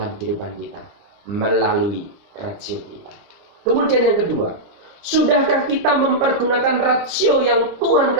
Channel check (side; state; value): left; late; 29 ms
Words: kehidupan kita melalui rasio kita. Kemudian yang kedua, sudahkah kita mempergunakan rasio yang Tuhan